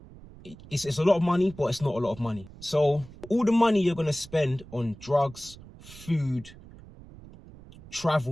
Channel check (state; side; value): noise; right; rumble, 19 dB below the sound